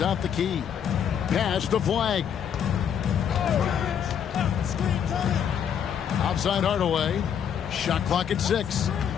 the key. Pass to Flag. Outside Hardaway. Shot clock at 6.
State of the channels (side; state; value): right; quieter; 8.4 dB